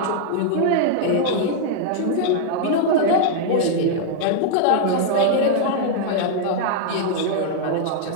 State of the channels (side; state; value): both; different; correlation -0.01